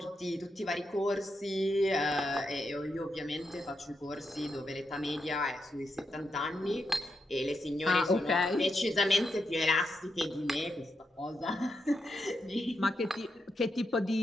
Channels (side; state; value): both; normal; correlation 0.84